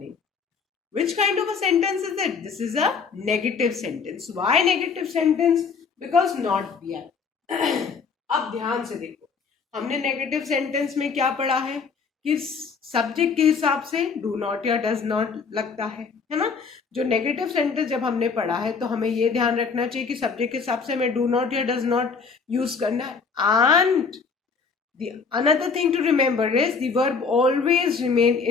Which kind of a sentence is it? This is a negative sentence. Why negative sentence? Because not दिया। अब ध्यान से देखो, हमने negative sentence में क्या पढ़ा है कि सब्जेक्ट के हिसाब से डू नॉट या डज नॉट लगता है ना। जो नेगेटिव सेंटेंस जब हमने पढ़ा है तो हमें ये ध्यान रखना चाहिए कि सब्जेक्ट के हिसाब से हमें डू नॉट या डज नॉट यूज करना है। And the another thing to remember is the verb always remain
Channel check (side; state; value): right; quieter; 5.3 dB